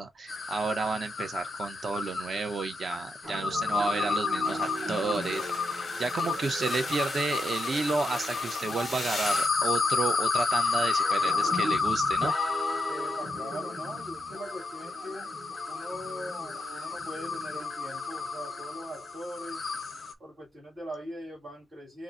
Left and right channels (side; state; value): both; normal; correlation 0.82